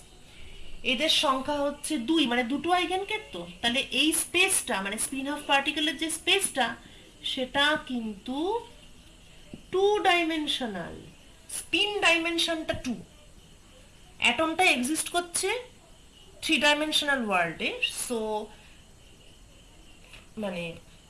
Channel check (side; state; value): both; identical; correlation 1.00